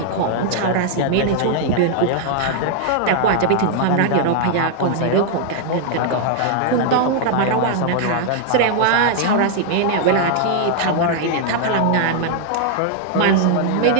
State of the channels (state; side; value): different; both; correlation 0.00